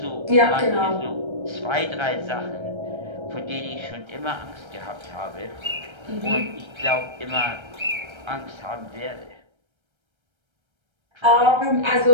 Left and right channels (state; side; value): late; left; 1.3 ms